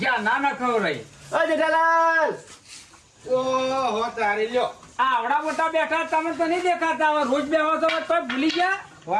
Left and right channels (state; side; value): identical; both; correlation 1.00